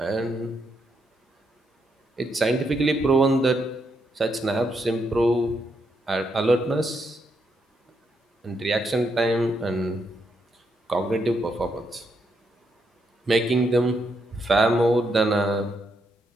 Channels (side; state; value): both; normal; correlation 0.79